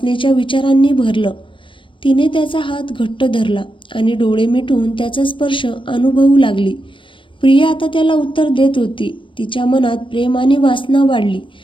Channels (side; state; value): right; late; 0.25 ms